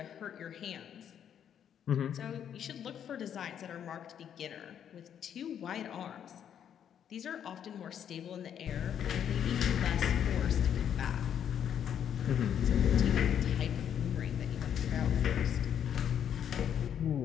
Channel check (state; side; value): quieter; right; 9.1 dB